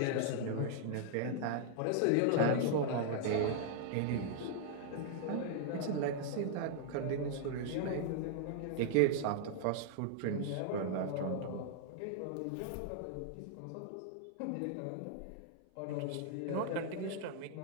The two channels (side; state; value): both; different; correlation -0.01